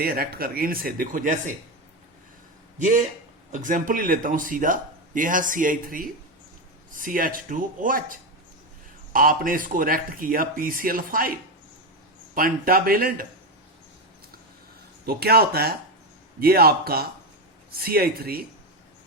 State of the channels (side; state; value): both; normal; correlation 0.12